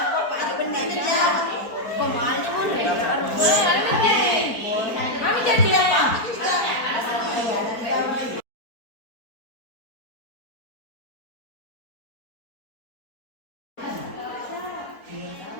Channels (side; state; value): right; late; 4.3 ms